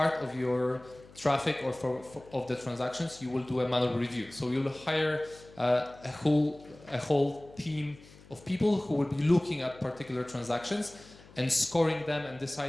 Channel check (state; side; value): noise; left; hum, 22 dB below the sound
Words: of your traffic or of the transactions, you will do a manual review. So you'll hire a whole team of people who will be looking at particular transactions and scoring them and